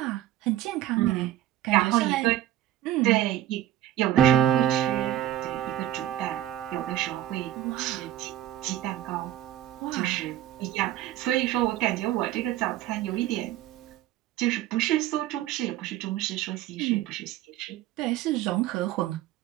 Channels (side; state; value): left; quieter; 13.0 dB